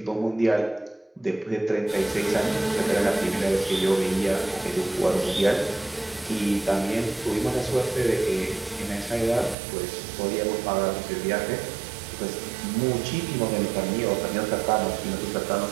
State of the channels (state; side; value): drops out; left; at 9.6 s